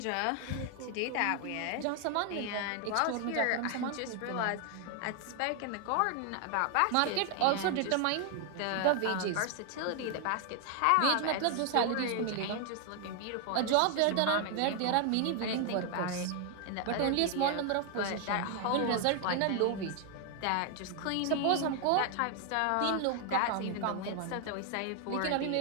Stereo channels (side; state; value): both; different; correlation 0.00